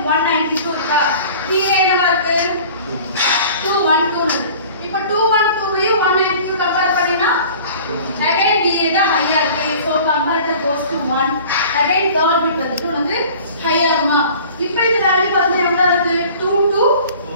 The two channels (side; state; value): both; inverted; correlation -0.46